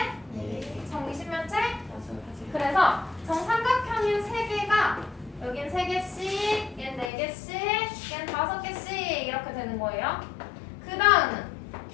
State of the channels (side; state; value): right; drops out; at 7.1 s